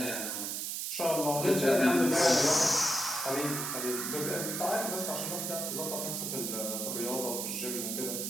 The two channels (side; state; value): right; noise; hiss, 3 dB below the sound